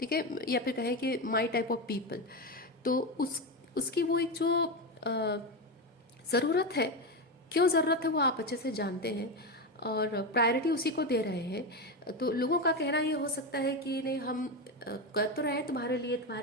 है, या फिर कहें कि माई टाइप ऑफ पीपल। तो उसकी वो एक जो ज़रूरत है, क्यों ज़रूरत है वो आप अच्छे से जानते हैं और प्रायोरिटी उसी को दे रहे हैं। तो लोगों का कहना ये हो सकता है कि नहीं, हम कर तो रहे हैं तुम्हारे लिए,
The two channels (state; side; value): normal; both; correlation 0.15